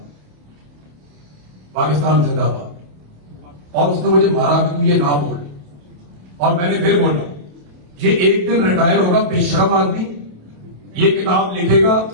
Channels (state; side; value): late; left; 27 ms